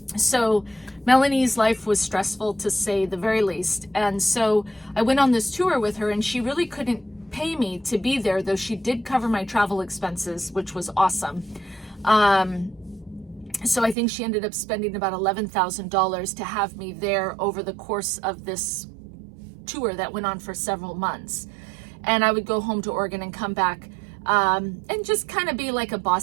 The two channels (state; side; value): drops out; left; at 14.0 s